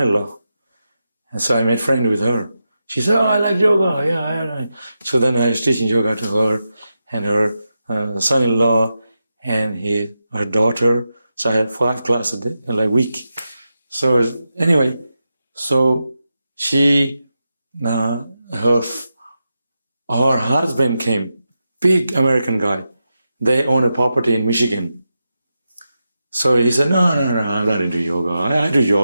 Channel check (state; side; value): inverted; both; correlation -0.89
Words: And so I made friends with her. She said, oh, I like yoga. Yeah. So then I was teaching yoga to her and her son-in-law and her daughter. So I had 5 classes a week. So anyway, so she, her husband came, big American guy. They own a property in Michigan. So he said, no, I'm not into yoga. I do